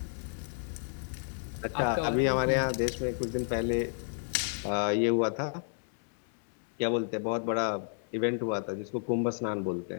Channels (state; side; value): silent; right; digital silence